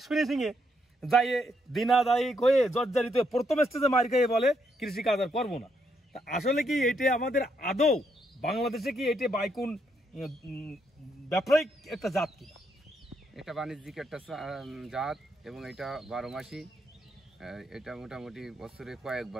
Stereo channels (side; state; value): both; normal; correlation 0.76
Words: ফিনিশিংয়ে যাই দিনাদায়ী হয়ে জর্জারিত প্রথম স্টেজে মার খেয়ে বলে কৃষিকাজ আর করবো না। তা আসলে কি এটা আমাদের আদৌ বাংলাদেশে কি এটা বাইকুন ব্যবসায়িক একটা জাত কিনা? এটা বাণিজ্যিক একটা জাত এবং এটা 12 মাসই। এটা মোটামুটি বছরে